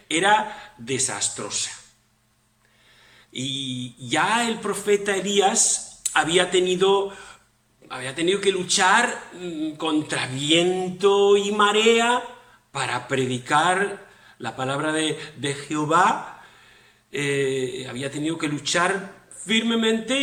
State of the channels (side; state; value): both; identical; correlation 1.00